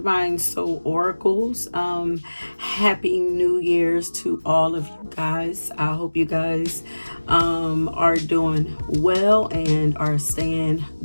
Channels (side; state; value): both; inverted; correlation -1.00